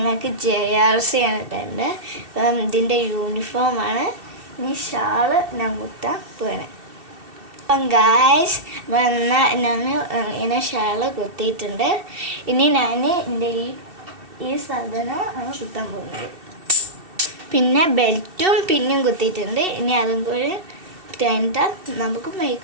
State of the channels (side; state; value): left; late; 2.7 ms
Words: JRC ആണ് ഇട്ടുണ്ട്. അപ്പം ഇതിൻ്റെ യൂണിഫോമാണ്. ഇനി ഷാള് ഞാൻ കുത്താൻ പോകണേ. അപ്പം ഗായ്സ്, എന്നാൽ ഞാൻ ഇങ്ങനെ ഷാള് കുത്തിയിട്ടുണ്ട്. ഇനി ഞാൻ എൻ്റെ ഈ സാധനം കുത്താൻ പോകുന്നത്. പിന്നെ ബെൽറ്റും പിന്നും കുത്തിയിട്ടുണ്ട്. ഇനി അതും കൂടി കഴിഞ്ഞിട്ട് നമുക്ക്